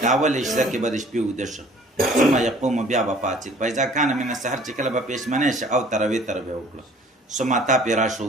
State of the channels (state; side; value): normal; both; correlation 0.53